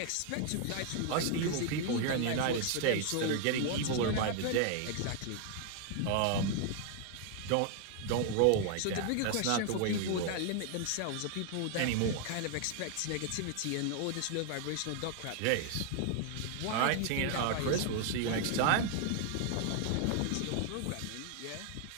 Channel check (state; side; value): different; both; correlation 0.00